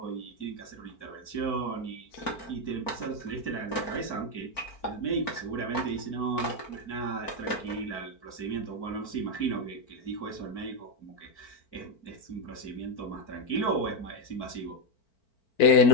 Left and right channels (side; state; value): right; late; 4.4 ms